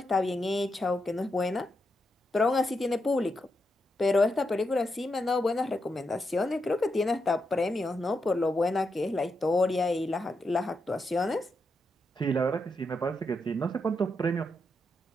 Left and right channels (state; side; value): normal; both; correlation 0.84